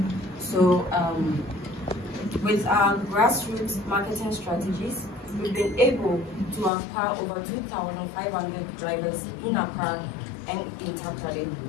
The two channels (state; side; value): drops out; right; at 6.7 s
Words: So with our grassroots marketing strategies, we've been able to acquire over 2,500 drivers in Accra and in Takoradi.